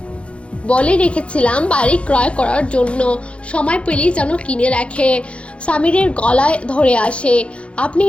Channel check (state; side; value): late; right; 0.060 ms